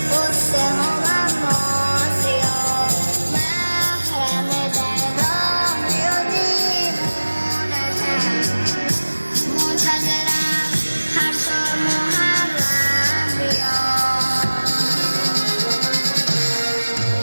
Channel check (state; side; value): inverted; both; correlation -1.00